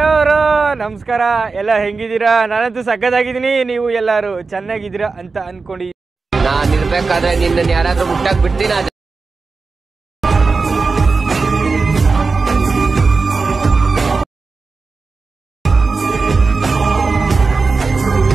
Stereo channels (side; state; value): left; quieter; 4.2 dB